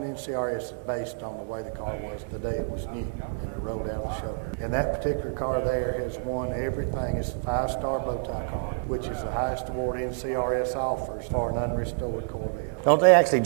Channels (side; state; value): left; silent; 59 dB below the other